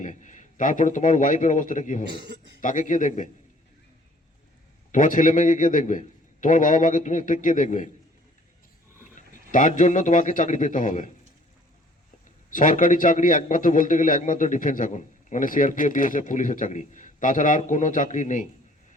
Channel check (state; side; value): normal; both; correlation 0.56